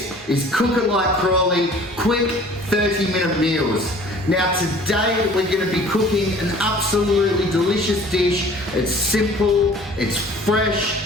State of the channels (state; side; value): normal; both; correlation 0.49